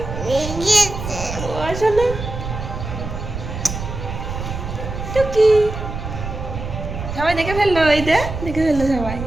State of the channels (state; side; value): noise; right; rumble, 7 dB below the sound